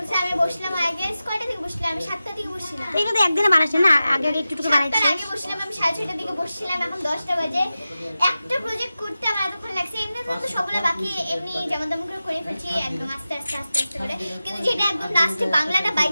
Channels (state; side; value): inverted; both; correlation -0.94